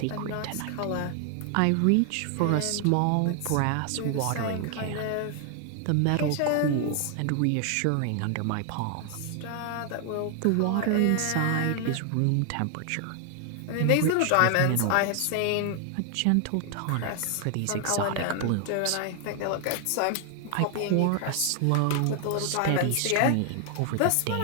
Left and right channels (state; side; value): different; both; correlation 0.00